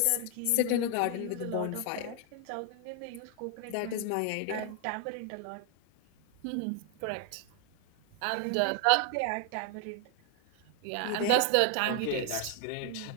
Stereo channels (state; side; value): different; both; correlation 0.00